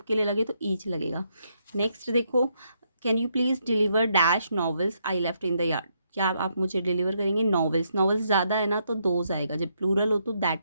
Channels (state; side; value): inverted; both; correlation -0.76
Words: के लिए लगे तो ईच लगेगा। नेक्स्ट देखो, can you please deliver dash novels I left in the yard, क्या आप मुझे डिलीवर करेंगे नॉवेल्स, नॉवेल्स ज़्यादा है ना तो दोज आएगा, जब प्लूरल हो तो दैट